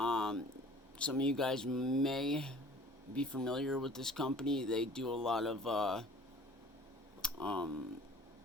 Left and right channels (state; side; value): normal; both; correlation 0.48